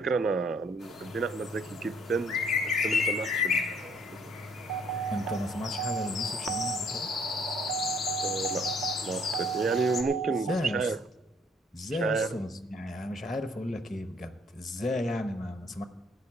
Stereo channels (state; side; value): normal; both; correlation 0.62